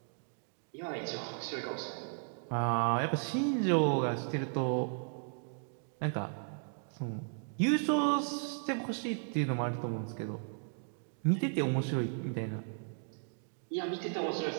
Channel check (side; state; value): left; silent; 54 dB below the other